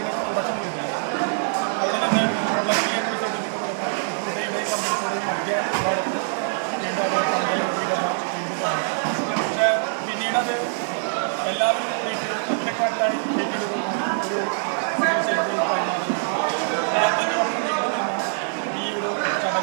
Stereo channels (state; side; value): silent; left; 63 dB below the other